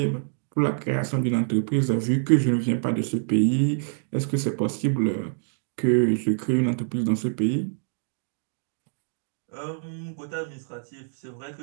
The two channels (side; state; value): left; silent; digital silence